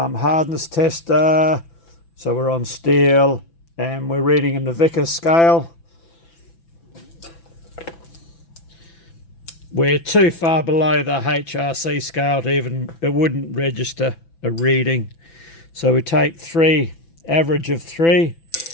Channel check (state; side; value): late; right; 6.0 ms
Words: tester. So we're on steel and we're reading in the Vickers scale. We're too far below the HRC scale to it wouldn't register a reading. So we take average of 3,